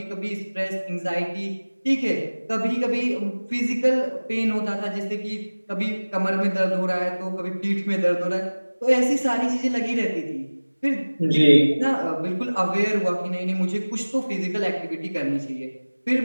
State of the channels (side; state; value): both; inverted; correlation -1.00